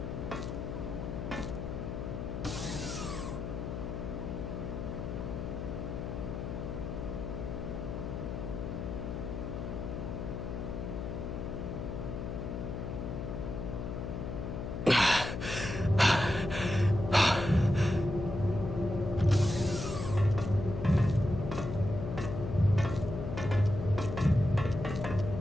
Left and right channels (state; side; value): noise; left; hum, 4 dB below the sound